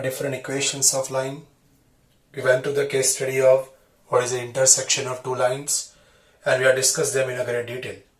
equations of line. We went to the case study of what is the intersection of two lines and we have discussed them in a great detail.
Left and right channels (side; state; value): both; identical; correlation 1.00